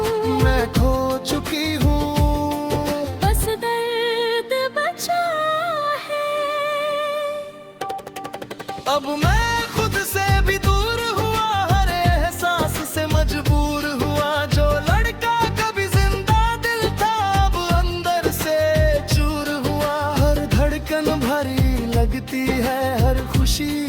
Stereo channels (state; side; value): identical; both; correlation 1.00